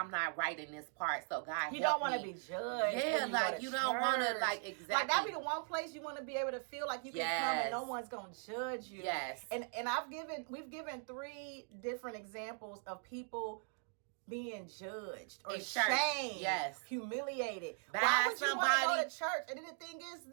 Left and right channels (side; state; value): left; silent; 51 dB below the other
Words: not right in this part, so God help me. You don't want to be judged. Yeah, like you don't want to like exactly. Like that be the one place you want to be able to feel like you can come and no one's gonna judge you. Yes. And we've given 3 different examples of people being judged or shamed, humiliated. Why would you want to go to church? And then the thing is